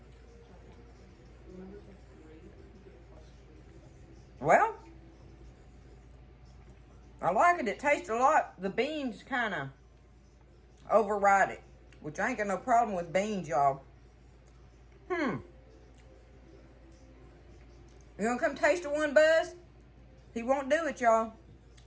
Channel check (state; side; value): identical; both; correlation 1.00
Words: Well, I like it. It tastes a lot. The beans kind of override it, which I ain't got no problem with beans, y'all. You gonna come taste of one, Buzz? He won't do it, y'all.